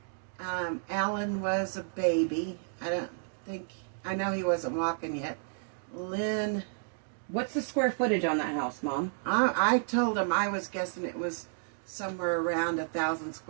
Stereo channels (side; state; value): left; silent; digital silence